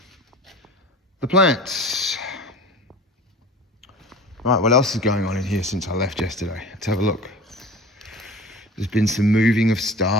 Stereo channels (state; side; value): normal; both; correlation 0.38